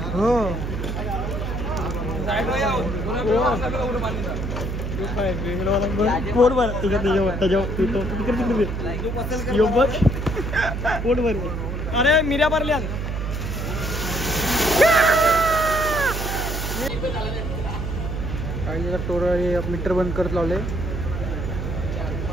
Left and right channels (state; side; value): noise; right; hum, 3 dB below the sound